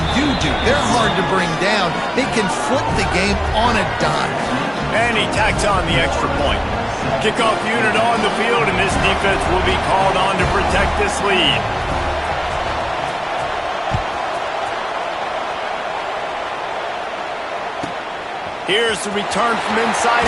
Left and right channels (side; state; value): both; identical; correlation 1.00